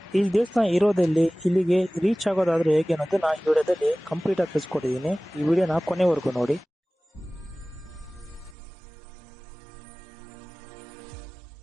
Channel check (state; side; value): drops out; left; at 8.6 s